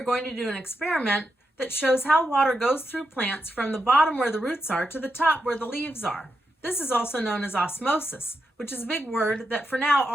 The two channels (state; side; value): normal; both; correlation 0.86